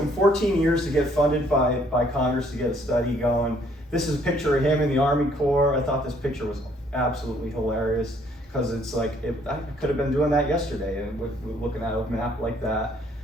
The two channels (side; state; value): both; normal; correlation 0.64